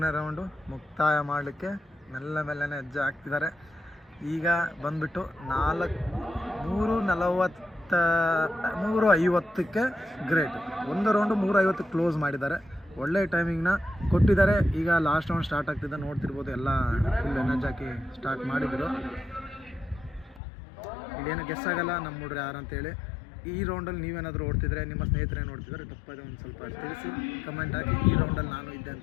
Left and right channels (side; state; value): right; drops out; at 20.4 s